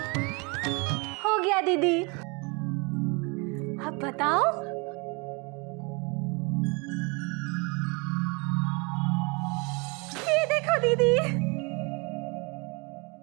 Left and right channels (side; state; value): left; quieter; 30.1 dB